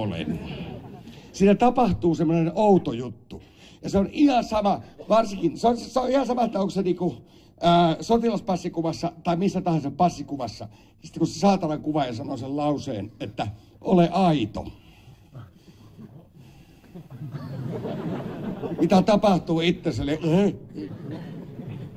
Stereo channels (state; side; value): identical; both; correlation 1.00